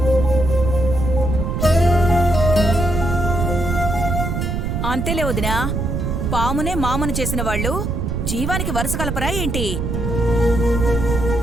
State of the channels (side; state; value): right; noise; rumble, 2 dB below the sound